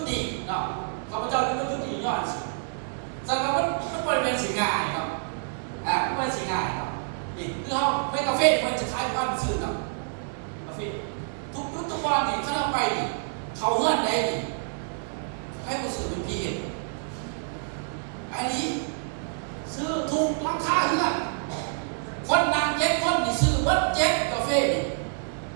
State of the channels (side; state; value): left; silent; 60 dB below the other